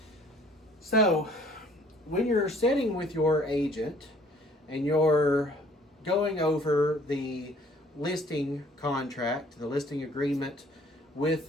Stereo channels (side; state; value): both; normal; correlation 0.57